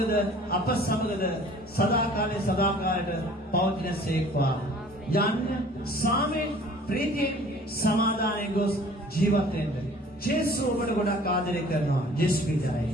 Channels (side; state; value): both; normal; correlation 0.50